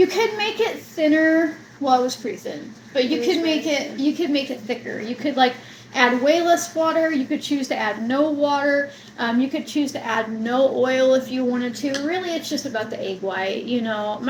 could make it thinner. Well, it was pretty thin, but you could make it thicker. You could add way less water. You could choose to add no water. You could choose to add no oil if you wanted to. Really, it's just about the egg white.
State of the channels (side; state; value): both; identical; correlation 1.00